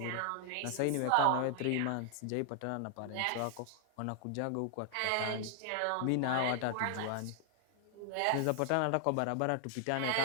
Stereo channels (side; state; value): both; different; correlation 0.00